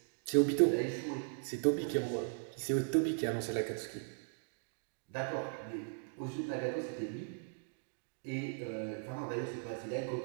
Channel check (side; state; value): left; silent; digital silence